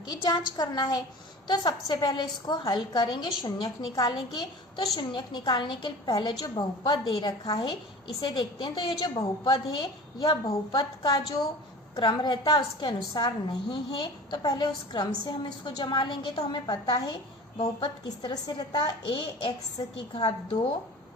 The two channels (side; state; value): both; normal; correlation 0.39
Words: की जांच करना है। तो सबसे पहले इसको हल करेंगे, शून्यक निकालेंगे। तो शून्यक निकालने के पहले जो बहुपद दे रखा है इसे देखते हैं। तो ये जो बहुपद है यह बहुपद का जो क्रम रहता है उसके अनुसार नहीं है, तो पहले उस क्रम से हम इसको जमा लेंगे। तो हमें पता है बहुपद किस तरह से रहता है, ax की घात 2